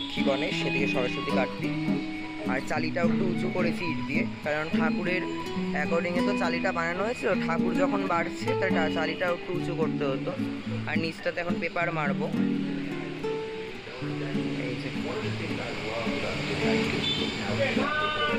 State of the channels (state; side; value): identical; both; correlation 1.00